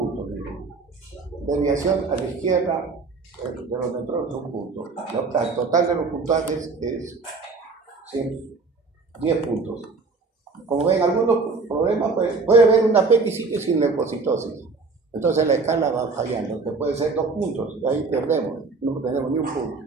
Desviación a la izquierda de los neutrones, 1 punto. El total de los puntajes es 10 puntos. Como ven, algunos problemas, pues, puede haber una apendicitis sin leucocitosis. Entonces la escala va fallando, que puede ser 2 puntos, ahí perdemos, no tenemos ni 1 punto.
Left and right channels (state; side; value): quieter; left; 4.2 dB